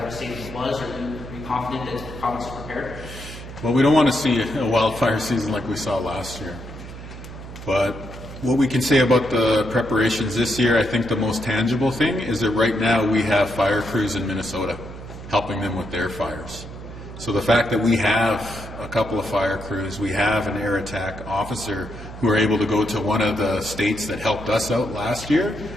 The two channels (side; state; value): right; noise; hum, 12 dB below the sound